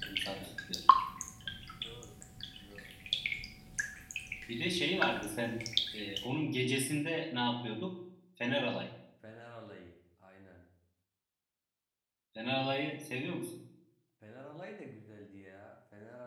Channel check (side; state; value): both; identical; correlation 1.00